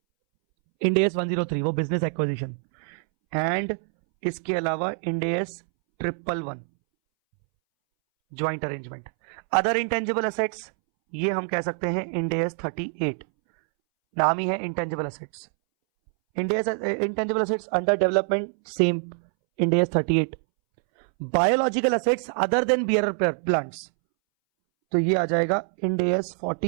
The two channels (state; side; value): silent; left; 62 dB below the other